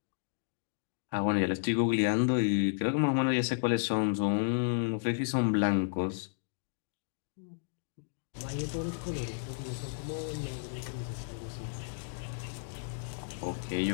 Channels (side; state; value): right; silent; digital silence